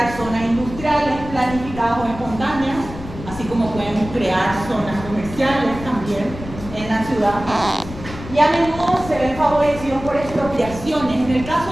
zonas industriales planificadas o espontáneas, así como pueden crear zonas comerciales también en la ciudad. Y a menudo se ven favorecidos por expropiaciones, en el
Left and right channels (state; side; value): noise; left; rumble, 12 dB below the sound